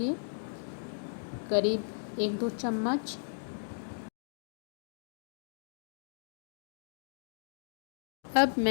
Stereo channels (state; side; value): silent; right; digital silence